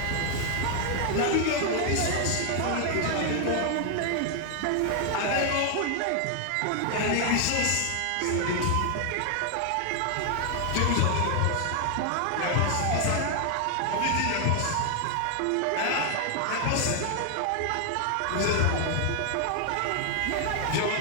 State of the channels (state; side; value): different; both; correlation 0.00